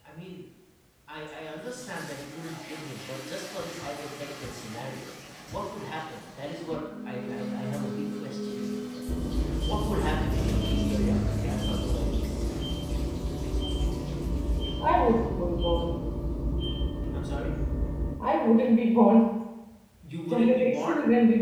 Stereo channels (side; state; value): both; identical; correlation 1.00